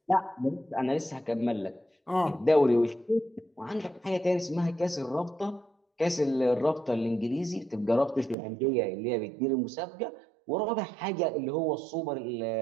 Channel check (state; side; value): drops out; left; at 8.3 s